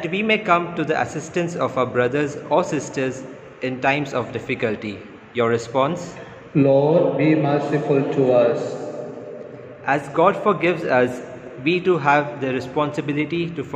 we may come to the assistance of our brothers or sisters in times of difficulty. Your response? Lord, be merciful to us. As God forgives us, we too have the responsibility to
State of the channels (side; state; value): both; identical; correlation 1.00